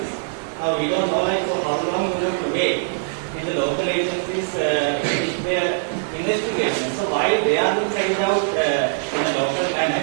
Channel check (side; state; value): left; silent; digital silence